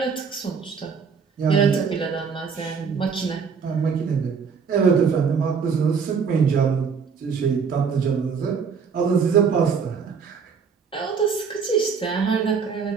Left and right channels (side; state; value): left; quieter; 5.9 dB